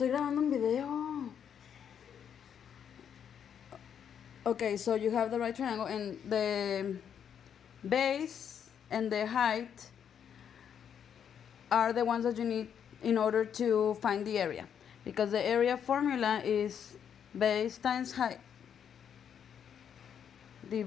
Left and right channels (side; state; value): right; quieter; 8.3 dB